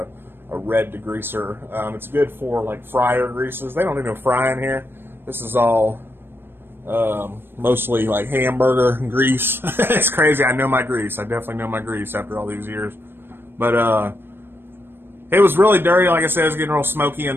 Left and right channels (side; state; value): left; late; 0.10 ms